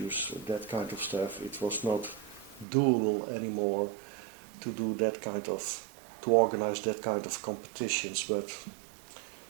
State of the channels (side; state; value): left; drops out; at 2.7 s